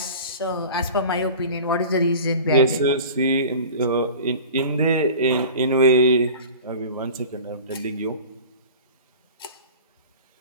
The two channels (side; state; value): both; inverted; correlation -0.39